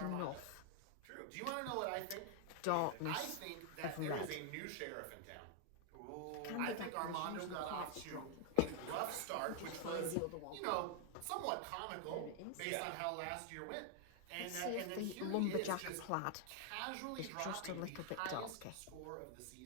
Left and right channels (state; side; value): different; both; correlation 0.00